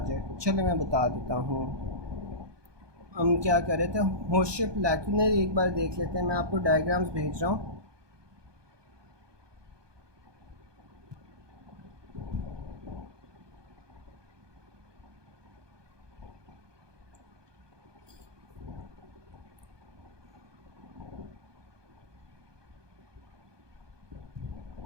चले मैं बता देता हूँ। हम क्या कर रहे थे, होशिप लैक्यूनाe एक बार देख लेते हैं, मैं आपको डायग्राम्स भेज रहा हूँ।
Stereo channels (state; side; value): late; left; 1.2 ms